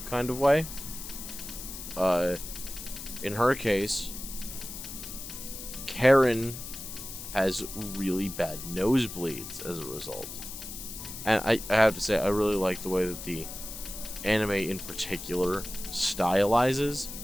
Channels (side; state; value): left; noise; hiss, 10 dB below the sound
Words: kind of way. In her case, Karen has really bad nosebleeds as a result. And I have to say, I really like the way that the anime in particular stylizes